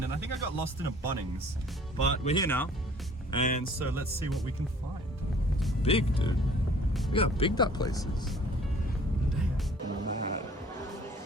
and I think I got lost in a Bunnings, but we're here now, and so let's see what we can find. It's big, dude. Look how big that place is.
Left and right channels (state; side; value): normal; both; correlation 0.53